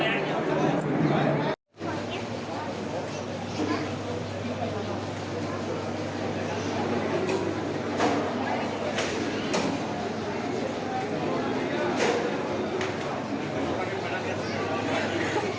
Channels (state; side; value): identical; both; correlation 1.00